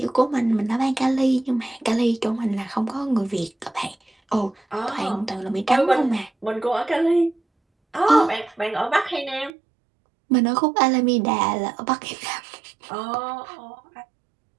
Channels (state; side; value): drops out; left; at 9.5 s